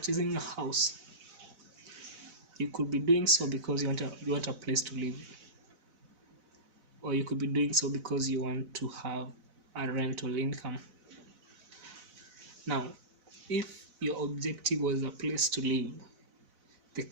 a house, you could be doing so because you want a place to live, or you could be doing so because you want to have a rental income. Now, if your objective was a place to live, the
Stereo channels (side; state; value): left; late; 4.0 ms